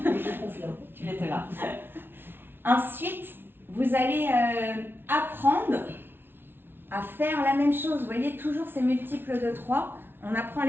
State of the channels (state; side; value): late; left; 0.11 ms